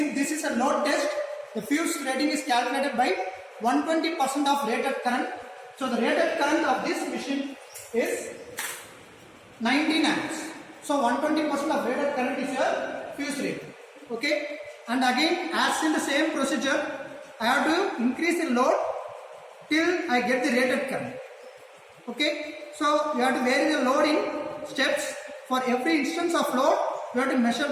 this is a load test, the fuse rating is calculated by 120% of rated current. So the rated current of this machine is 19 amps. So 120% of rated current is your fuse rating. Okay. And again, as in the same procedure, I have to increase the load till I get the rated current. Okay. So you have to vary the load in steps. For every instance of load, you have to measure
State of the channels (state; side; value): identical; both; correlation 1.00